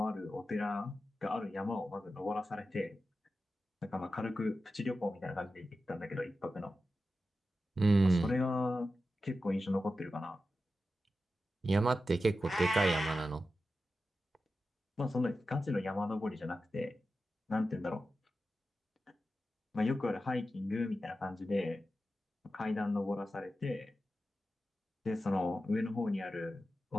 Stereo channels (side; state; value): both; normal; correlation 0.92